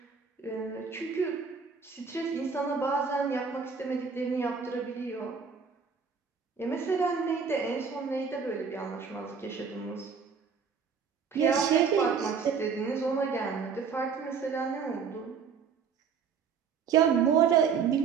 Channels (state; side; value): quieter; left; 6.0 dB